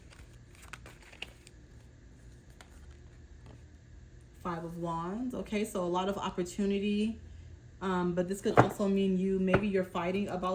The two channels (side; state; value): both; identical; correlation 1.00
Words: Five of Wands. Okay, so a lot of opportunity. But this could also mean maybe you're fighting